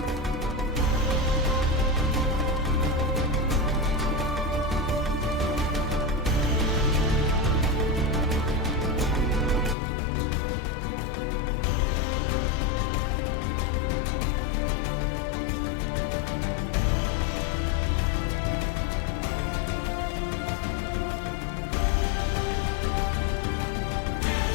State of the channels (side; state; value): right; drops out; at 9.8 s